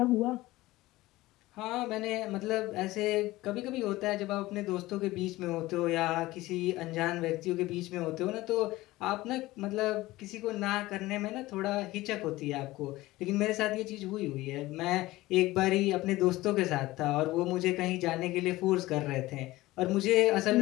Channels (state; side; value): quieter; right; 18.3 dB